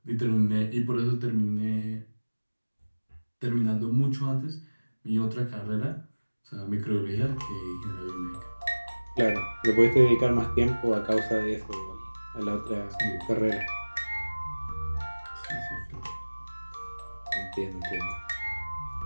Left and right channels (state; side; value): inverted; both; correlation -1.00